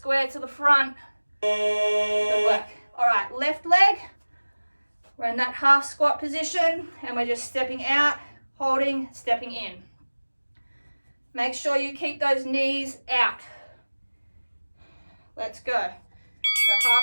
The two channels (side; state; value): both; inverted; correlation -1.00